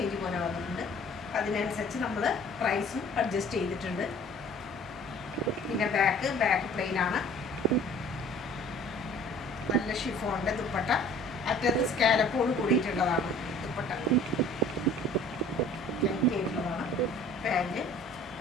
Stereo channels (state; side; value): normal; both; correlation 0.50